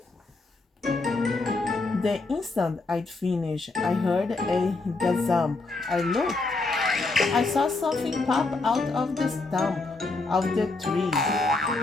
The instant I'd finished, I heard a gazump. I looked. I saw something pop out of the stump of the tree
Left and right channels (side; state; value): right; quieter; 3.5 dB